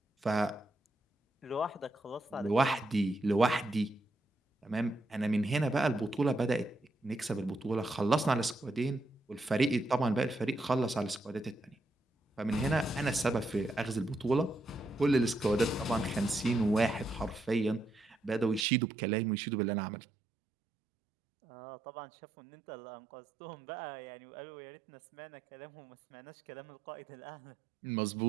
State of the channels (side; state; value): left; drops out; at 18.7 s